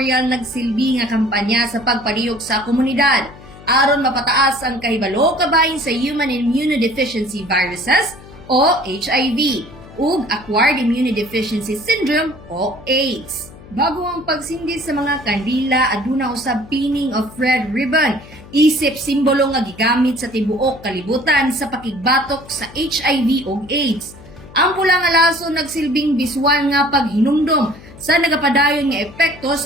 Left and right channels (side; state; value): left; noise; hum, 20 dB below the sound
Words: nagsilbi nga kampanya sa pagpalihok sa komunidad aron mapataas ang kahibalo kabahin sa Human Immunodeficiency Viruses o HIV ug Acquired Immunodeficiency Syndrome o AIDS. Bago ang pagsindi sa mga kandila, aduna usab pinning of red ribbon, isip simbolo nga gigamit sa tibuok kalibutan sa pakigbatok sa HIV ug AIDS. Ang pula nga laso nagsilbing biswan nga paghinumdom sa nagapadayon nga epekto